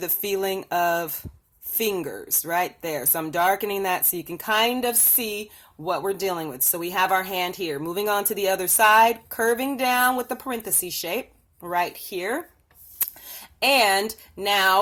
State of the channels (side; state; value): both; identical; correlation 1.00